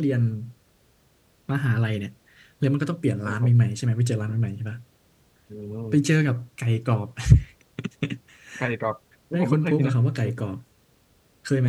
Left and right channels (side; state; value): both; identical; correlation 1.00